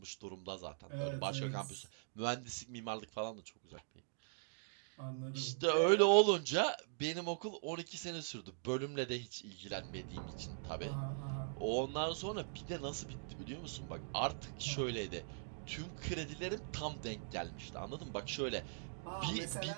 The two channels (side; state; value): left; silent; digital silence